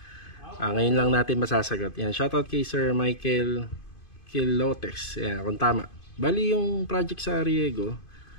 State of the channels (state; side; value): late; right; 2.5 ms